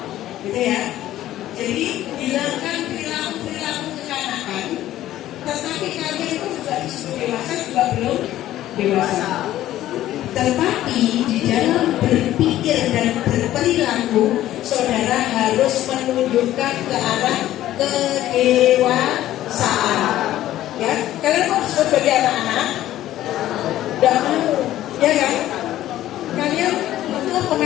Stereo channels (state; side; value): quieter; right; 13.7 dB